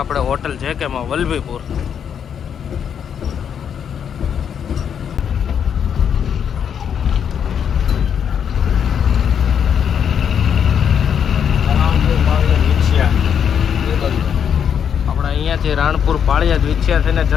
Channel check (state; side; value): quieter; right; 8.0 dB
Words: હોટલ જેકેમાં વલભીપુર. આપણે અહીંયાથી રાણપુર પાળિયાદ વિછ્યા થઈને